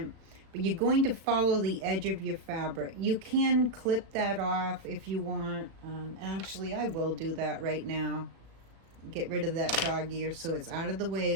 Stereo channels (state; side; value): late; left; 36 ms